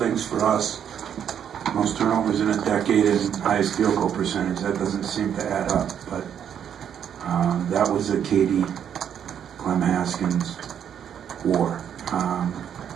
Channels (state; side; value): quieter; left; 8.9 dB